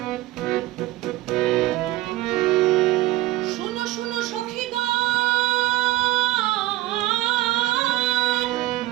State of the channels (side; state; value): left; quieter; 16.4 dB